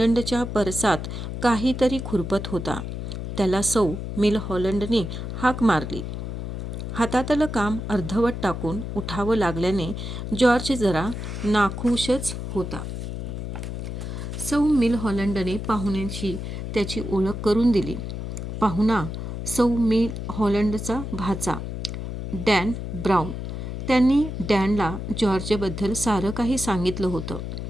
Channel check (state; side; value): noise; left; hum, 6 dB below the sound